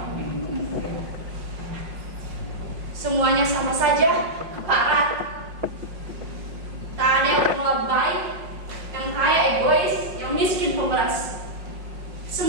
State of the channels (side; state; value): left; late; 5.2 ms